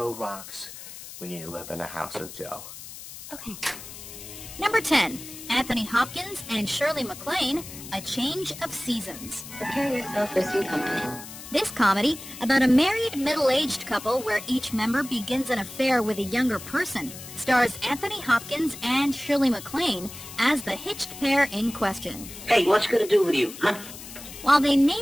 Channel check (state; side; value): noise; left; hiss, 13 dB below the sound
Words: rocks when you live in a house of Joe. Okay. Number 10, Anthony Hopkins and Shirley MacLaine, A Change of Seasons. Prepare yourself for some company. This comedy, about a married middle-aged couple where each member begins an affair with a younger person, stars Anthony Hopkins and Shirley MacLaine as the hitched pair in question. Hey, what's it gonna do with you, huh? While they